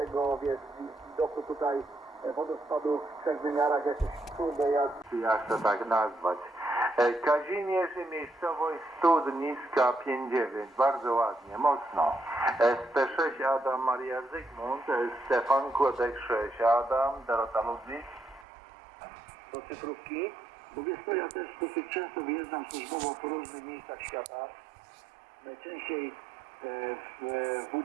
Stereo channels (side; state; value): left; drops out; at 18.4 s